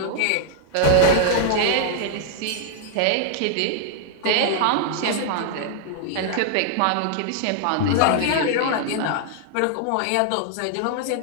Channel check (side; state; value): both; different; correlation -0.01